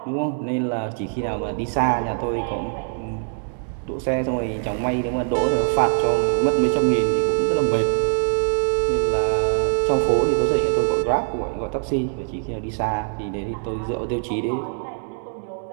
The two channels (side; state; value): left; silent; digital silence